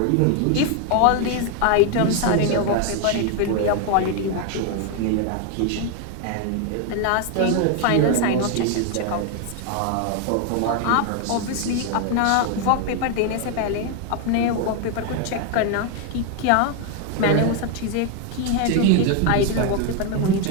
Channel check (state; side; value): different; both; correlation 0.01